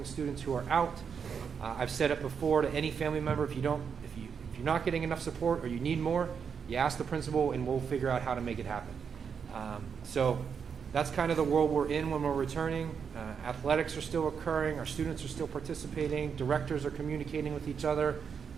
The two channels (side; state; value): left; quieter; 6.6 dB